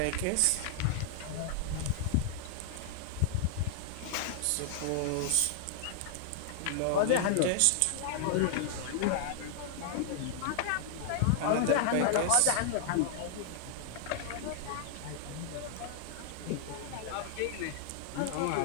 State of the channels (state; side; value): different; both; correlation -0.01